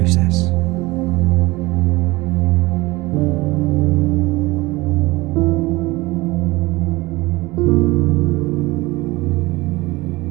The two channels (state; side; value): quieter; left; 21.3 dB